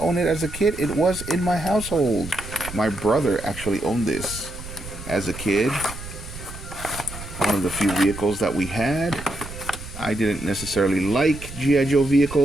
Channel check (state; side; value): noise; right; rumble, 12 dB below the sound